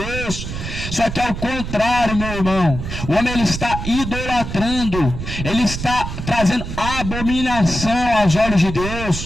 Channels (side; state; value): right; noise; rumble, 6 dB below the sound